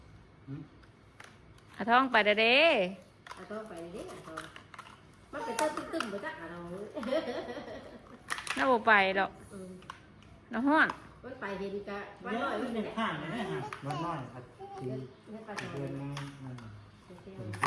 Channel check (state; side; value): identical; both; correlation 1.00